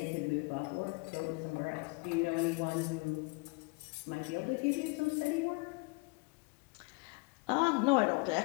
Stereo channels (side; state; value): right; quieter; 29.1 dB